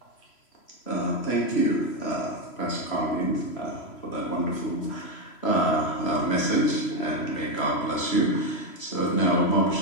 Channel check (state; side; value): late; right; 3.0 ms